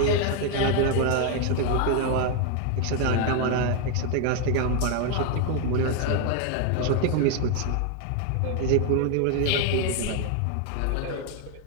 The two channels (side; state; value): both; different; correlation 0.01